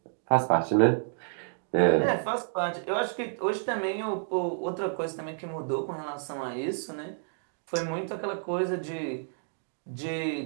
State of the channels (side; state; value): left; silent; digital silence